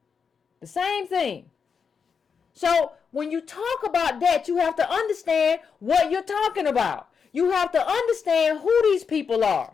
The same thing. So when you talk about that, you have to understand what you're talking about. You have to understand who these people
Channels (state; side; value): quieter; right; 6.1 dB